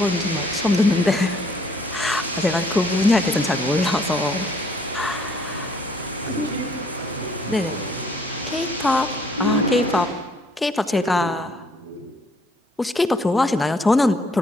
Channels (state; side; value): normal; both; correlation 0.63